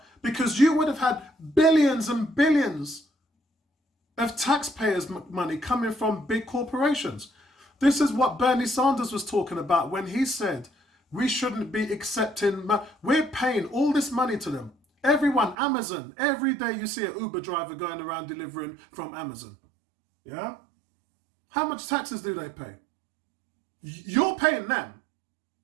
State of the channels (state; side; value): drops out; left; at 15.6 s